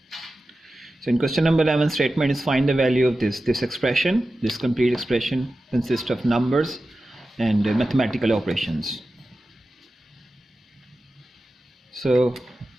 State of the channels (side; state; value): both; normal; correlation 0.93